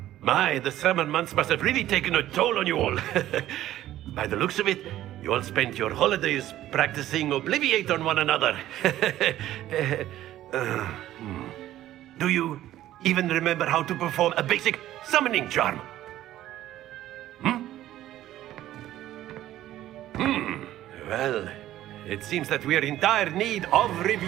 My, the summer months must have really taken a toll on you all. By the looks of it, you all spent your holidays practicing Obliviate on one another. Do you even remember how to perform a basic summoning charm? Well, it seems that we are in dire need of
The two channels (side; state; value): left; quieter; 13.6 dB